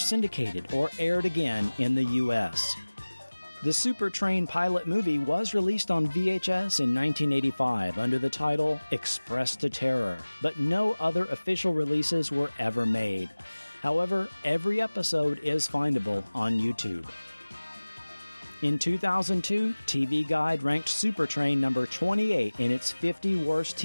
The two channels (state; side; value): inverted; both; correlation -1.00